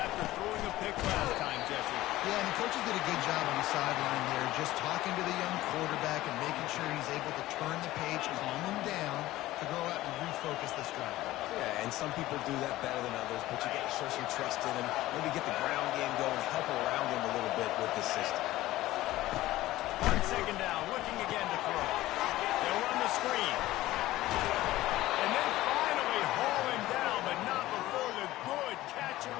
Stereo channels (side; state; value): right; quieter; 16.4 dB